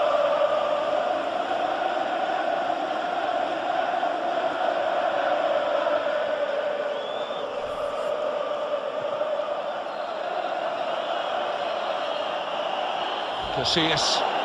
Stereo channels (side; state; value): both; identical; correlation 1.00